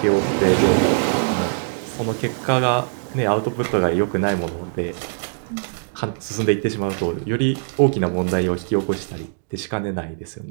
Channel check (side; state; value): left; silent; digital silence